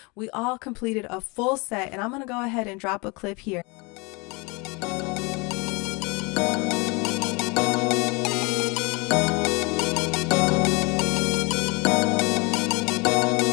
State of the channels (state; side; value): quieter; right; 28.4 dB